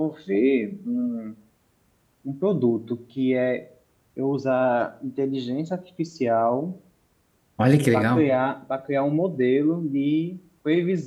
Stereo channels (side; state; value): both; identical; correlation 1.00